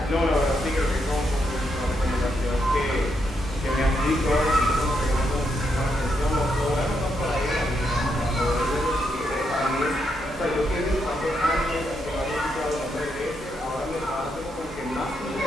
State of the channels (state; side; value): normal; both; correlation 0.80